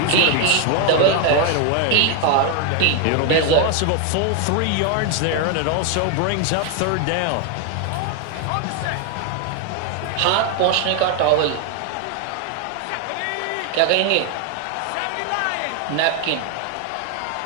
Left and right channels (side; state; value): both; different; correlation 0.01